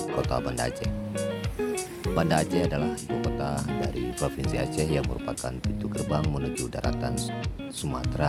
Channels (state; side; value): identical; both; correlation 1.00